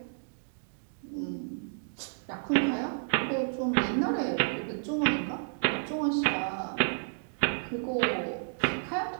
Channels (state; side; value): silent; left; digital silence